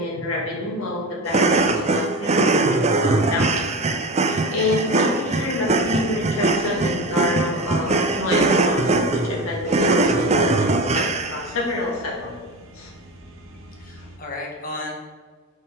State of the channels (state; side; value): normal; both; correlation 0.25